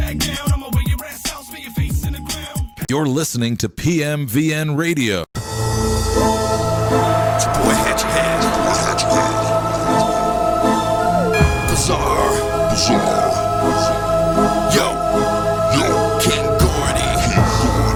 down. I'ma wear your ass out, spin your face in the ground. You're listening to PMVN Radio. It's your boy Hatchet Head. Bizarre. Yo, King Gordy.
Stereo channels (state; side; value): identical; both; correlation 1.00